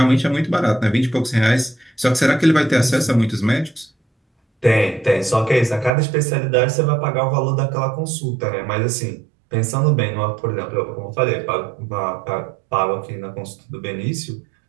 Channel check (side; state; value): left; drops out; at 5.9 s